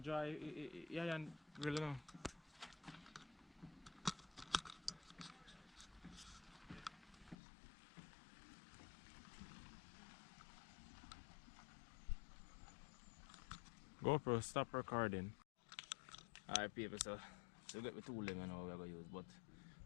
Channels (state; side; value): drops out; right; at 7.4 s